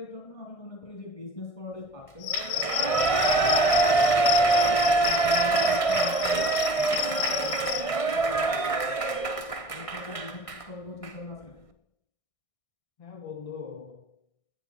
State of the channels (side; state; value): right; late; 1.6 ms